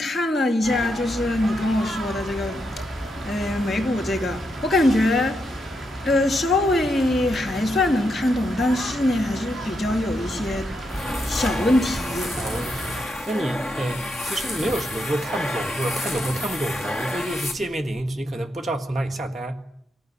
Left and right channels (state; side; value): normal; both; correlation 0.82